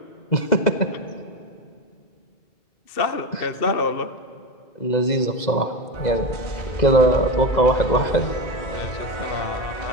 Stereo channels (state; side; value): late; right; 2.0 ms